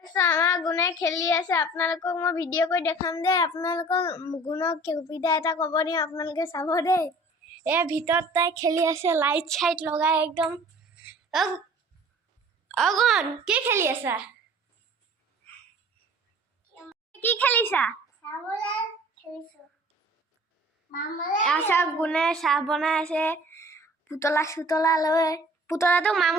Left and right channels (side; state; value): both; normal; correlation 0.48